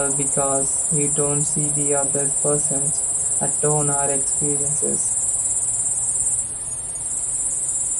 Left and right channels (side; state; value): both; identical; correlation 1.00